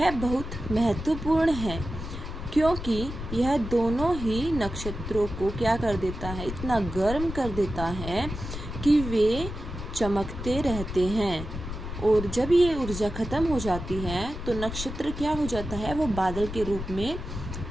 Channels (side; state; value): left; noise; rumble, 8 dB below the sound